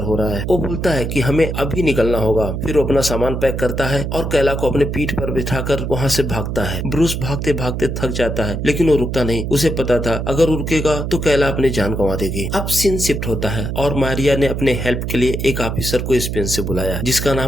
हो रहा है। वो बोलता है कि हमें अभी निकलना होगा। फिर वो अपना सामान पैक करता है और कैला को अपने पीठ पर बिठाकर वहाँ से भागता है। ब्रूस भागते भागते थक जाता है, लेकिन वो रुकता नहीं। उसे पता था अगर वो रुकेगा तो कैला अपनी जान गंवा देगी। अब सीन शिफ्ट होता है और मारिया ने अपने हेल्प के लिए एक ऑफिसर को स्पेन से बुलाया, जिसका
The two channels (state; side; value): noise; right; hum, 3 dB below the sound